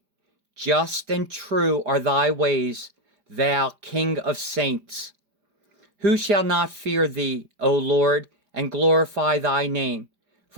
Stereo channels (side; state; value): left; late; 5.0 ms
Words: Just and true are thy ways, thou King of saints. Who shall not fear thee, O Lord, and glorify thy name?